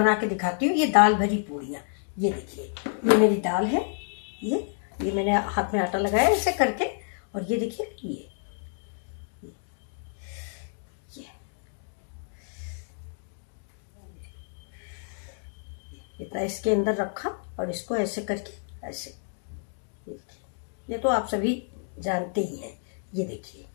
के दिखाती हूँ। ये दाल भरी पूड़ियाँ, ये देखिए ये मेरी दाल है। ये मैंने हाथ में आटा लगाया ऐसे करके, और ये देखिए ये इतना इसके अंदर रखा और इसको ऐसे करके ऐसे, ये तो आप सभी जानते ही हैं। ये देखिए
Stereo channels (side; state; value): right; silent; digital silence